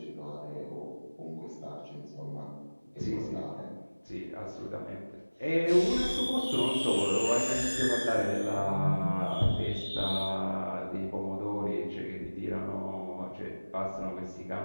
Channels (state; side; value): inverted; both; correlation -1.00